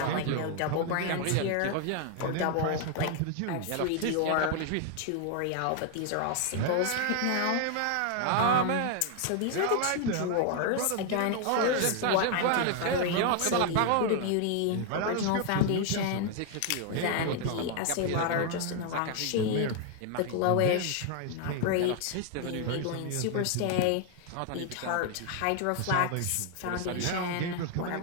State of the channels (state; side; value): different; both; correlation 0.00